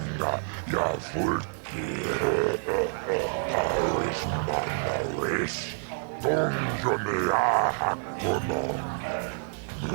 ya fulki, Taris manaris, donjonea hakonon.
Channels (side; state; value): left; silent; digital silence